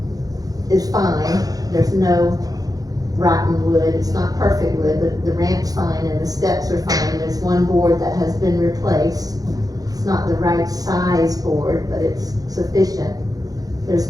is fine, there's no rotten wood, it's not perfect wood, but the ramp's fine and the steps are fine. There's one board that has been replaced. It's not the right size board, but it's sufficient.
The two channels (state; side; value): late; left; 0.18 ms